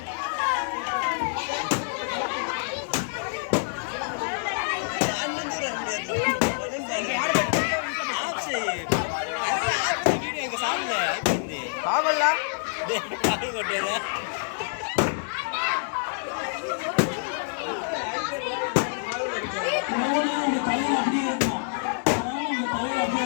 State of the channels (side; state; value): right; silent; digital silence